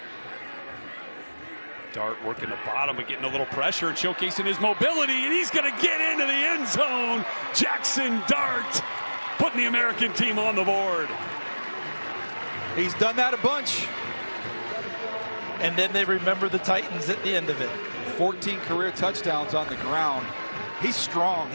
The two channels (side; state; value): both; inverted; correlation -1.00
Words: Dart working the bottom, but getting a little pressure and showcasing his mobility, and he's going to get into the end zone. Jackson Dart putting the American team on the board. He's done that a bunch. And then they remember the Titans at the end of it. 14 career touchdowns on the ground. He's strong.